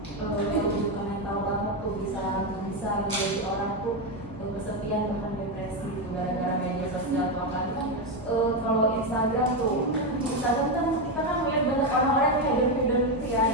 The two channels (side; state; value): left; noise; hum, 19 dB below the sound